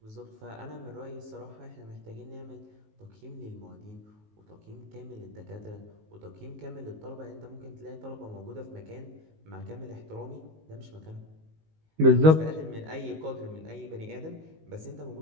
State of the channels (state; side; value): late; left; 19 ms